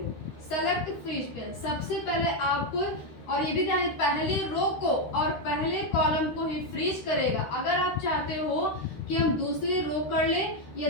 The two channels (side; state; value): right; late; 13 ms